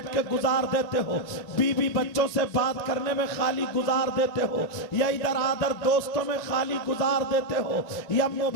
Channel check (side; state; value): right; late; 1.9 ms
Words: के गुजार देते हो, बीवी बच्चों से बात करने में खाली गुजार देते हो, या इधर आधर दोस्तों में खाली गुजार देते हो, या